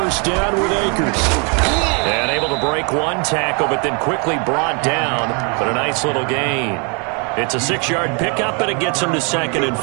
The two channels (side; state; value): left; quieter; 35.3 dB